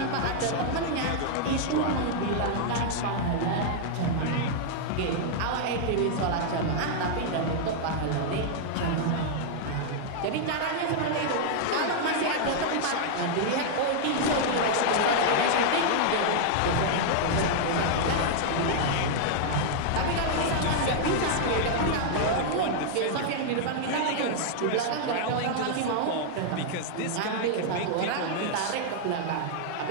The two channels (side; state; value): both; different; correlation -0.01